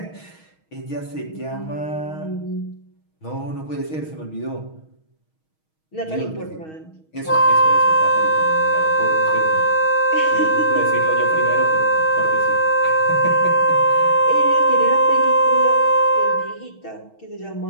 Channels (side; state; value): right; late; 6.3 ms